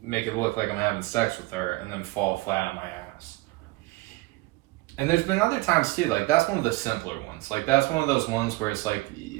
make it look like I'm having sex with her, and then fall flat on my ass. And there's been other times too, like that's one of the simpler ones. Like that's one of those ones where it's like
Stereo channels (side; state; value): left; quieter; 22.0 dB